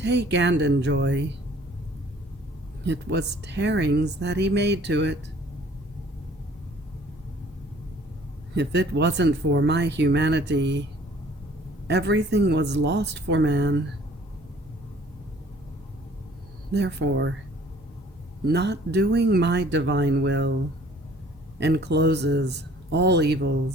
and enjoy, it was tearings that he made to it. If it wasn't for my humanity, everything was lost for man. Therefore, not doing my divine will encloses all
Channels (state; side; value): normal; both; correlation 0.55